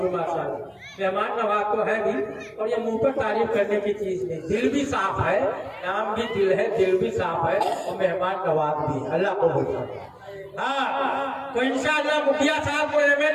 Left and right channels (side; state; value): both; identical; correlation 1.00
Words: की माशाअल्लाह, मेहमान नवाज तो है भी, और ये मुंह पर तारीफ करने की चीज नहीं, दिल भी साफ है, नाम भी दिल है, दिल भी साफ है, और मेहमान नवाज भी। अल्लाह को बोलता हाँ, तो इंशाअल्लाह मुखिया साहब को